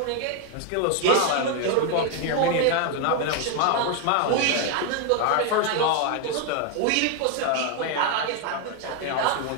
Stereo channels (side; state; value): both; different; correlation 0.01